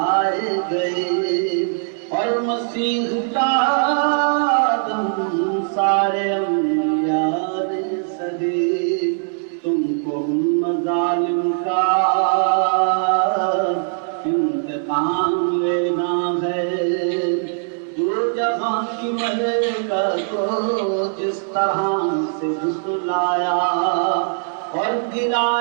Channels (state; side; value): silent; left; 65 dB below the other